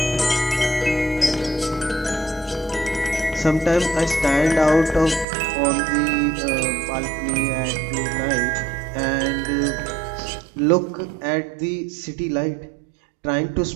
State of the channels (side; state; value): left; drops out; at 5.2 s